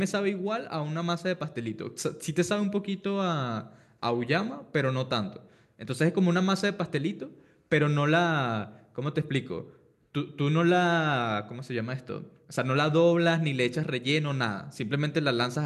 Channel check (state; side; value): identical; both; correlation 1.00